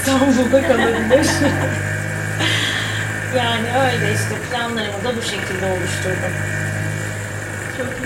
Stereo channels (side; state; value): both; identical; correlation 1.00